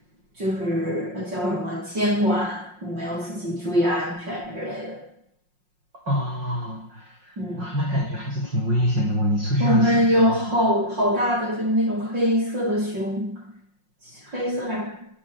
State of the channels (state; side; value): late; left; 5.5 ms